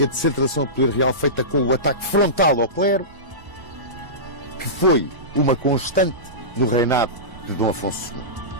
de centralização do poder real feita com o ataque frontal ao clero, que foi uma constante do reinado de Dom Afonso II.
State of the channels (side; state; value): left; late; 1.0 ms